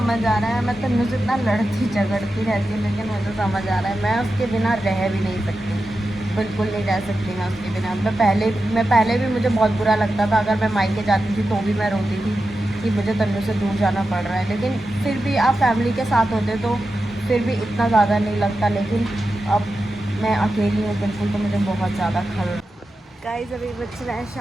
आ रहा है मैं तन्नू से इतना लड़ती झगड़ती रहती हूँ, लेकिन मुझे समझ आ रहा है मैं उसके बिना रह भी नहीं सकती, बिल्कुल नहीं रह सकती मैं उसके बिना। मैं पहले भी मुझे बहुत बुरा लगता था, अगर मैं मायके जाती थी तो भी मैं रोती थी कि मुझे तन्नू से दूर जाना पड़ रहा है। लेकिन फिर भी आप फैमिली के साथ होते तो फिर भी इतना ज़्यादा नहीं लगता, लेकिन अब मैं अकेली हूँ बिल्कुल, तो मुझे बहुत ज़्यादा खल। गाइस अभी बज रहा है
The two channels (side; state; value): both; normal; correlation 0.91